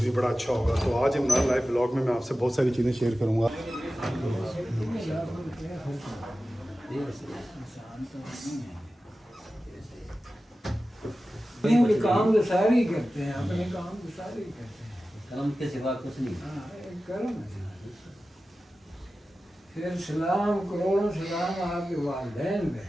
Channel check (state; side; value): normal; both; correlation 0.94